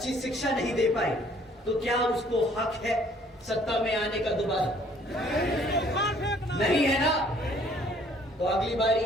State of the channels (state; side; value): normal; both; correlation 0.59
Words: शिक्षा नहीं दे पाई तो क्या उसको हक है सत्ता में आने का दोबारा? नहीं है ना? तो अगली बार